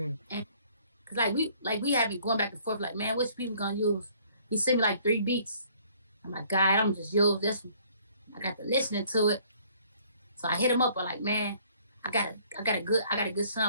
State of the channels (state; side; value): inverted; both; correlation -0.59